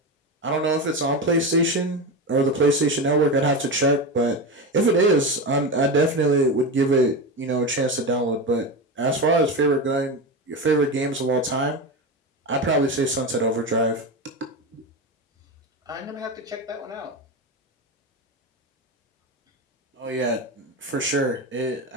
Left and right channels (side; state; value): both; normal; correlation 0.19